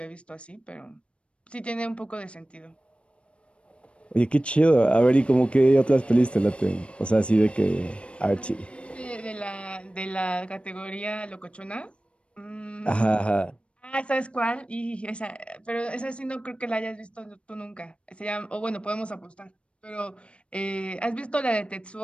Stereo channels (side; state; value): right; late; 0.059 ms